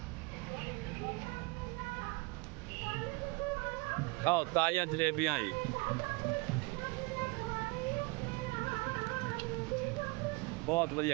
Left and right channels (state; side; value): quieter; left; 26.4 dB